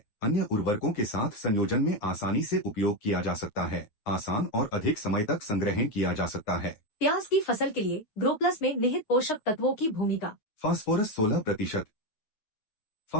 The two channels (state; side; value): late; right; 9.5 ms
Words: अन्य उर्वरकों के साथ संयोजन में आसानी से उपयोग किया जा सकता है, आसान और अधिक समय तक संग्रहण किया जा सकता है। प्याज की फसल के लिए ग्रो प्लस में निहित पोषक तत्वों की भूमिका। फास्फोरस 16%।